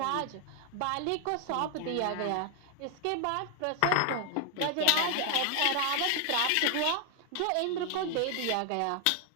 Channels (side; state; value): both; different; correlation 0.00